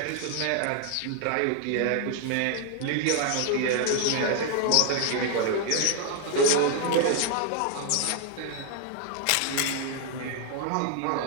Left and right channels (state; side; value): different; both; correlation 0.00